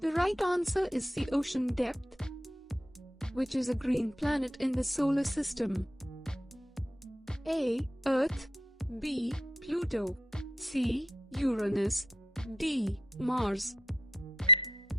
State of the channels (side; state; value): both; normal; correlation 0.75